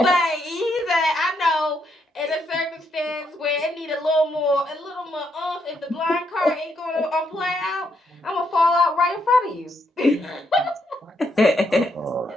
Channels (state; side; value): normal; both; correlation 0.76